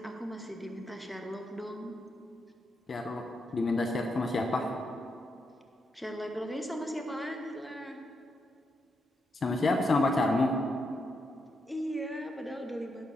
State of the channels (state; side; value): normal; both; correlation 0.82